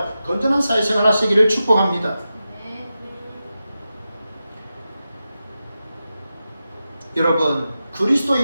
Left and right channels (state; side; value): inverted; both; correlation -0.91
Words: 건전한 사회생활 하시기를 축복합니다. 여러분,